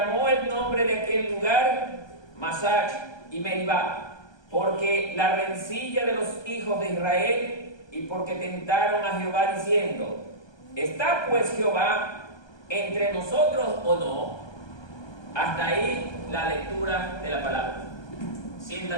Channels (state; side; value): late; right; 1.2 ms